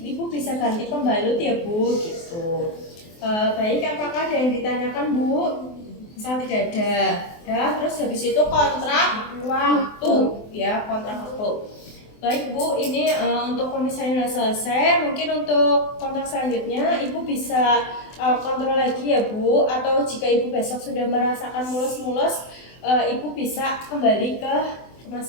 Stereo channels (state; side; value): late; right; 24 ms